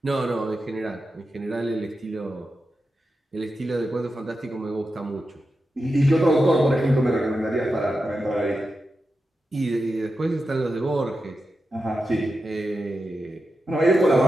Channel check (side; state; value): both; normal; correlation 0.90